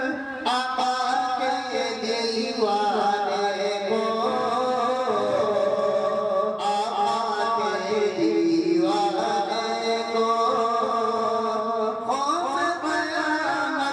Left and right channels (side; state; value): both; identical; correlation 1.00